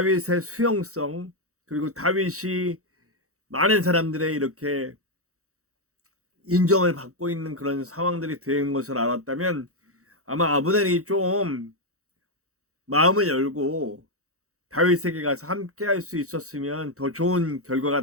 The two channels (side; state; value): left; late; 0.65 ms